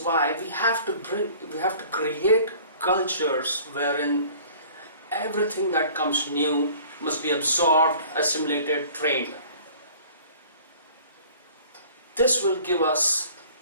why we have to create cultures wherein everything that comes new must be absorbed, assimilated, trained. This will give us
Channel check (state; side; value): inverted; both; correlation -0.49